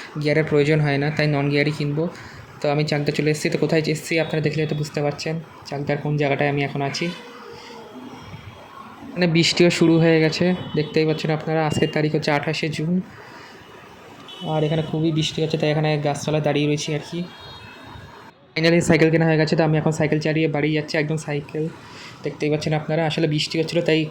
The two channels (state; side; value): identical; both; correlation 1.00